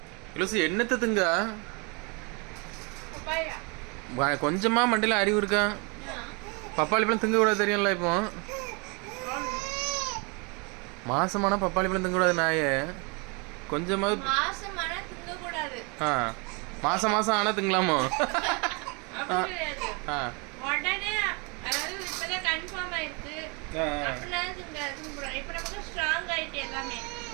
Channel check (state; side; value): quieter; left; 31.7 dB